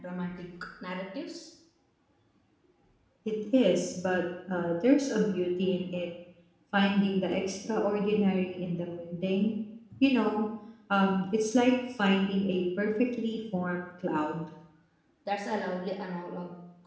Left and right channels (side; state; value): both; identical; correlation 1.00